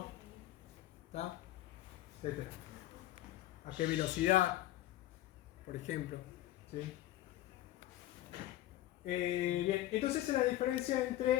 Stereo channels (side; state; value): right; quieter; 14.5 dB